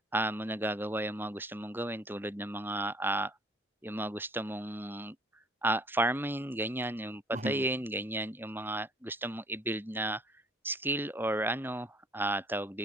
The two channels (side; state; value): both; normal; correlation 0.57